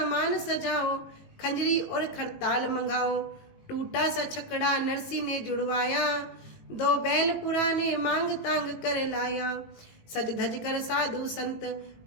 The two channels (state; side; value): late; right; 18 ms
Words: सजाओ, खंजरी और खरताल मंगाओ। टूटा सा छकड़ा नरसी ने जुड़वाया, दो बैल पुराने मांग तांग कर लाया। सज धज कर साधु संत